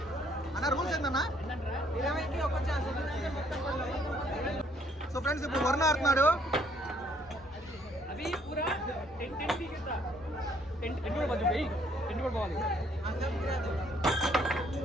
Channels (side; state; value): both; normal; correlation 0.65